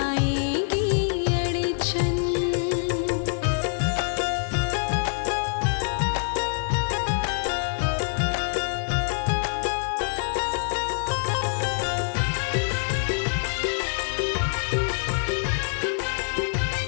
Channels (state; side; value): silent; right; digital silence